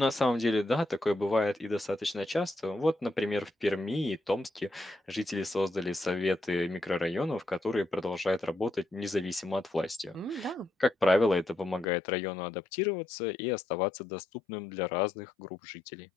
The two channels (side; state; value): right; drops out; at 11.9 s